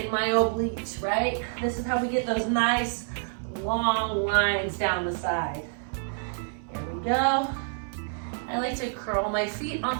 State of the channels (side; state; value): left; silent; 59 dB below the other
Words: my obliques, right? This is how we get those nice long lines down the side. Here we go. I like to curl my feet on